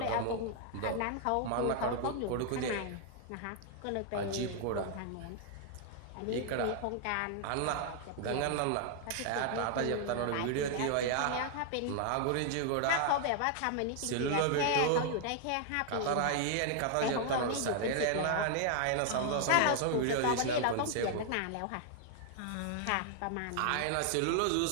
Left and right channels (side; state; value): both; different; correlation 0.00